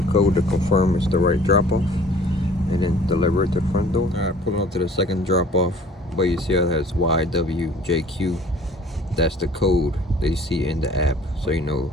code to confirm it's the right drop off, and then deliver it to the front door. All right, pulling up to the second drop off, but you see how it has YWJQ. That's the code that you see in the app, so you know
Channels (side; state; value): both; normal; correlation 0.51